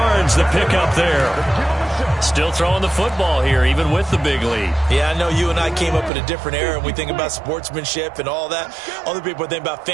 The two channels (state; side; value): drops out; left; at 6.1 s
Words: the pickup there. Still throwing the football here, even with the big lead. Yeah, I know you and I came up in a different era, and we think about sportsmanship and all that. Other people think about